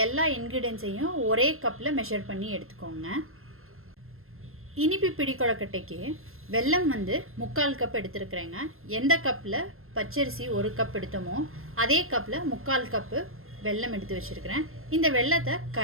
எல்லா இன்க்ரீடியன்ஸையும் ஒரே கப்பில் மெஷர் பண்ணி எடுத்துக்கோங்க. இனிப்பு பிடி கொழுக்கட்டைக்கு வெல்லம் வந்து 3/4 கப் எடுத்துருக்குறேங்க. எந்த கப்பில் பச்சரிசி 1 கப் எடுத்தோமோ அதே கப்பில் 3/4 கப்பு வெல்லம் எடுத்து வச்சுருக்கிறேன். இந்த வெல்லத்தை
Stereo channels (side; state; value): left; late; 0.61 ms